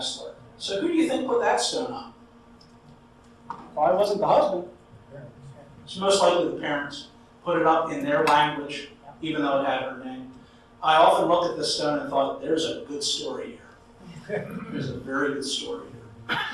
So who do you think put that stone up? Probably wasn't the husband. It's most likely the parents put it up in their language, even though it had her name. I often looked at this stone and thought, there's a good story here. There's a very good story here.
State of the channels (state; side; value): identical; both; correlation 1.00